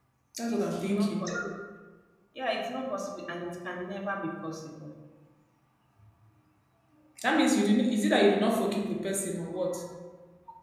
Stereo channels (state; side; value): identical; both; correlation 1.00